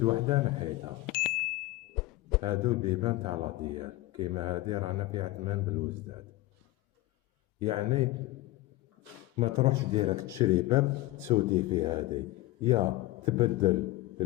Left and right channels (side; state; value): right; quieter; 18.5 dB